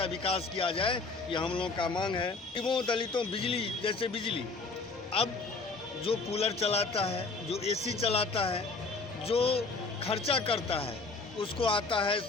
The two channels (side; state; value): right; quieter; 3.9 dB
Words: विकास किया जाए। यह हम लोग का मांग है। गरीबों दलितों बिजली, जैसे बिजली, अब जो कूलर चलाता है, जो एसी चलाता है, जो खर्चा करता है, उसको आता है